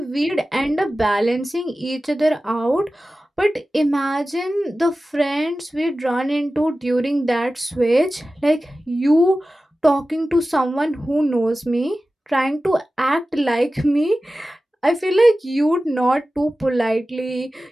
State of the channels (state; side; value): normal; both; correlation 0.95